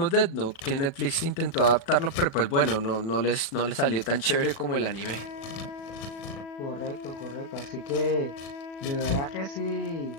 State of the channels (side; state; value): right; late; 36 ms